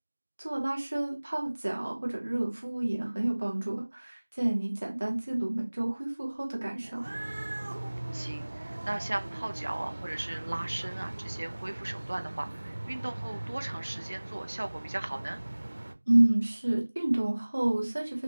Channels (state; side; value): inverted; both; correlation -1.00